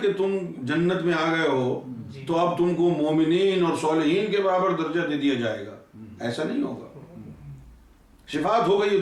کہ تم جنت میں آ گئے ہو تو اب تم کو مومنین اور صالحین کے برابر درجہ دے دیا جائے گا. ایسا نہیں ہوگا. شفاعت ہو گئی ہے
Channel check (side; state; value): both; identical; correlation 1.00